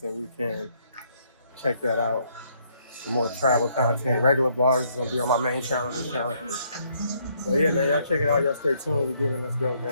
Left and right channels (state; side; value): inverted; both; correlation -0.70